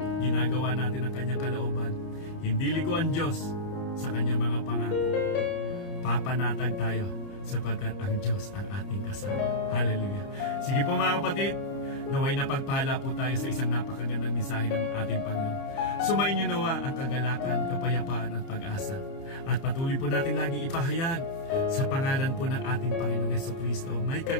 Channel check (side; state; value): right; late; 30 ms